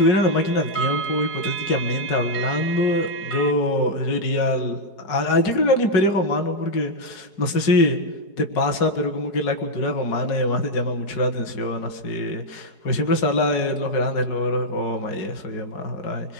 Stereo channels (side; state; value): right; late; 4.8 ms